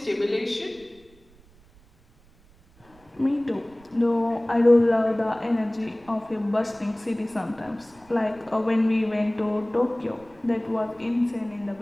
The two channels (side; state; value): right; noise; rumble, 28 dB below the sound